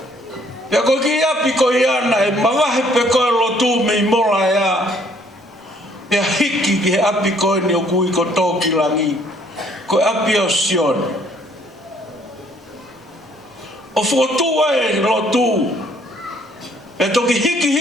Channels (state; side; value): normal; both; correlation 0.63